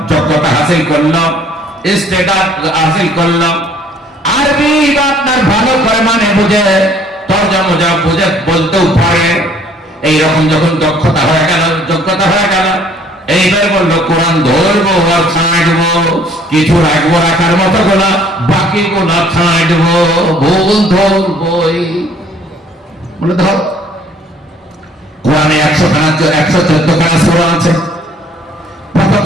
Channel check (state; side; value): normal; both; correlation 0.59